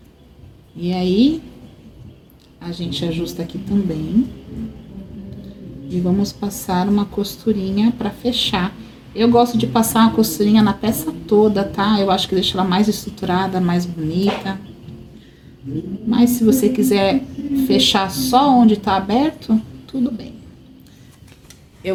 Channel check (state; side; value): identical; both; correlation 1.00